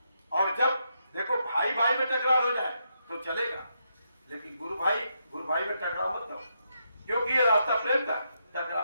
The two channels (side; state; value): both; inverted; correlation -0.81